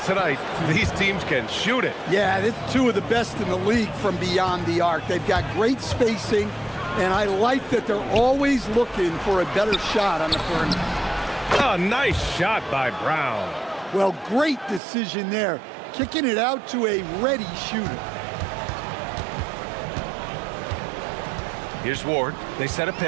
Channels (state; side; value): drops out; left; at 14.8 s